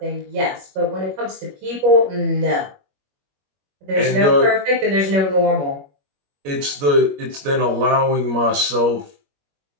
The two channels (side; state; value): left; late; 21 ms